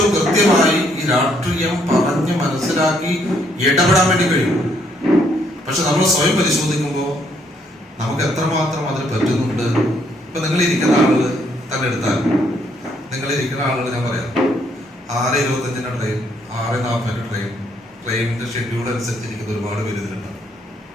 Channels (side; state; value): both; normal; correlation 0.70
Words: കൃത്യമായി ഈ രാഷ്ട്രീയം പറഞ്ഞ് മനസ്സിലാക്കി ഇടപെടാൻ വേണ്ടി കഴിയും. പക്ഷെ നമ്മൾ സ്വയം പരിശോധിക്കുമ്പോൾ നമുക്ക് എത്രമാത്രം അതിന് പറ്റുന്നുണ്ട്. ഇപ്പൊ നിങ്ങളിരിക്കുന്ന ആളുകൾ തന്നെ എടുത്താൽ, നിങ്ങളിരിക്കുന്ന ആളുകൾ ഞാൻ പറയാം, 6:25 ട്രെയിൻ, 6:40 ട്രെയിൻ, ട്രെയിനിന്റെ ഷെഡ്യൂൾ അനുസരിച്ചിരിക്കുന്ന ഒരുപാട് പേര് ഇതിലുണ്ടാവും